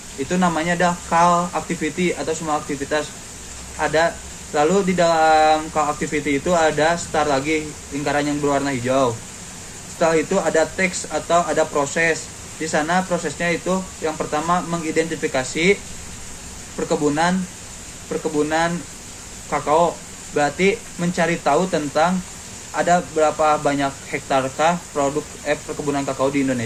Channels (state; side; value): identical; both; correlation 1.00